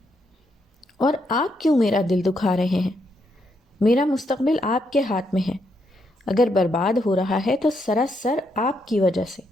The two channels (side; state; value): both; normal; correlation 0.78